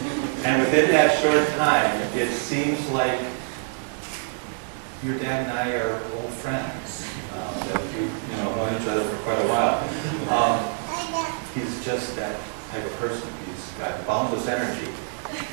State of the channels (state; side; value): silent; left; 61 dB below the other